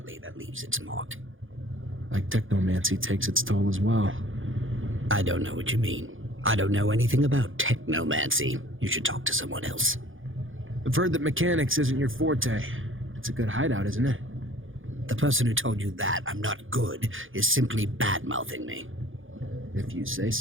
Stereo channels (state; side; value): late; left; 0.58 ms